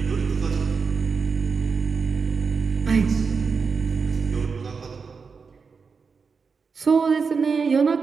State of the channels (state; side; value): quieter; left; 5.2 dB